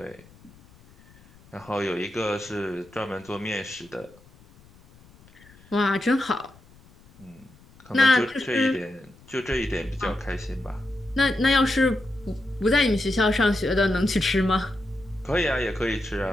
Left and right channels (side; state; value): left; noise; rumble, 26 dB below the sound